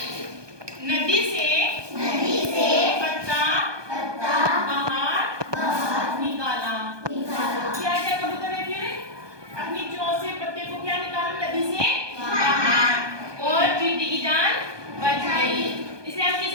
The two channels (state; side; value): late; left; 1.2 ms